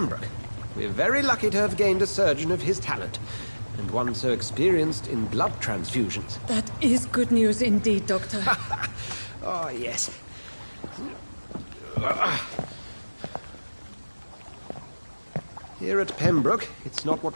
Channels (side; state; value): both; inverted; correlation -1.00